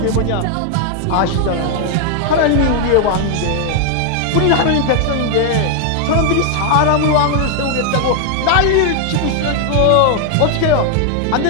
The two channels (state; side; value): different; both; correlation 0.00